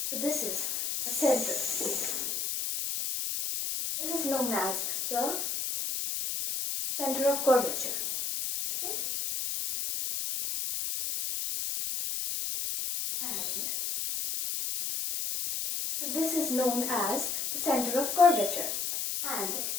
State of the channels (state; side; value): noise; left; hiss, 2 dB below the sound